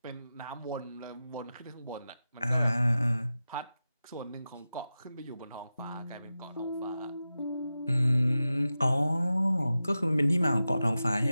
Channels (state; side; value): inverted; both; correlation -0.93